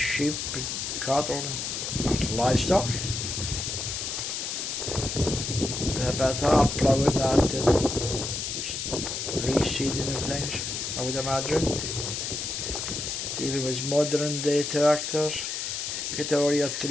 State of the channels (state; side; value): noise; left; hiss, 3 dB below the sound